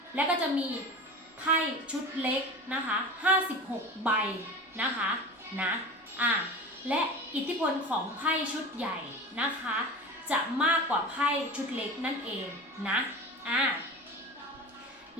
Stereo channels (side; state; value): both; normal; correlation 0.32